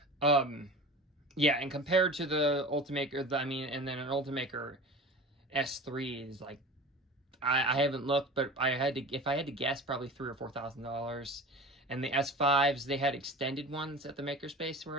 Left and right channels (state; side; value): normal; both; correlation 0.36